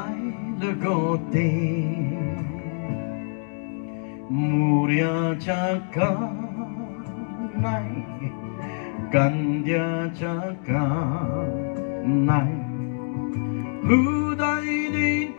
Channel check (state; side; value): silent; right; digital silence